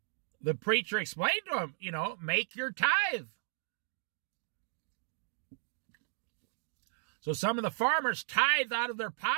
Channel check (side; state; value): left; silent; digital silence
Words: the preacher explained to him, make your tithe. So some of the farmers tithed out of their